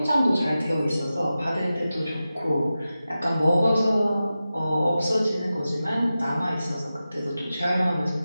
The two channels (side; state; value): both; inverted; correlation -0.93